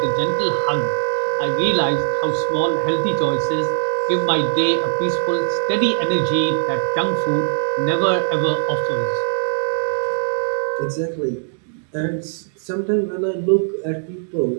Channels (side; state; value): left; silent; digital silence